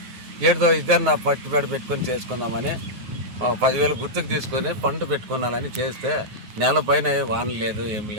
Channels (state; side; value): late; left; 9.5 ms